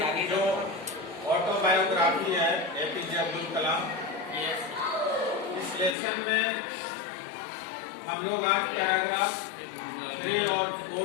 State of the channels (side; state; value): right; drops out; at 6.0 s